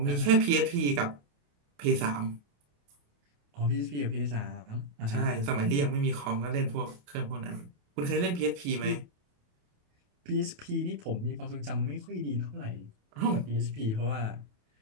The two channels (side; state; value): left; late; 28 ms